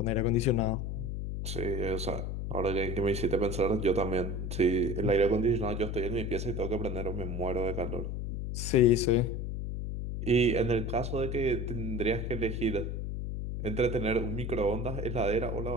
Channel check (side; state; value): left; noise; hum, 3 dB below the sound